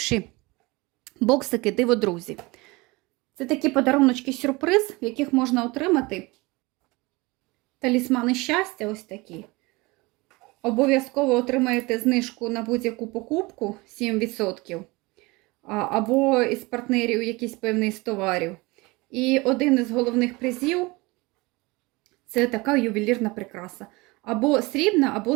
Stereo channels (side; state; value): left; quieter; 23.7 dB